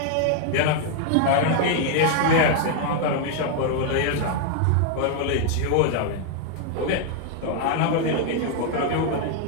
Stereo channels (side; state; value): both; different; correlation 0.00